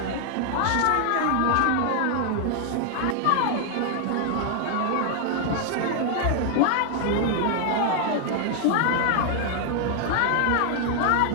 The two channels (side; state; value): both; different; correlation 0.00